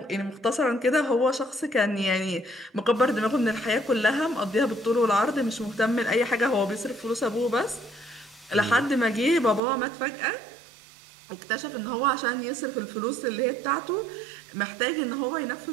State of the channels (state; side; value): drops out; left; at 9.6 s